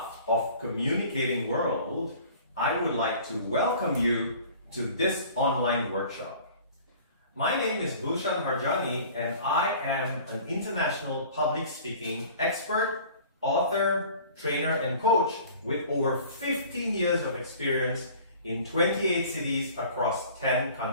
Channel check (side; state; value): both; inverted; correlation -0.46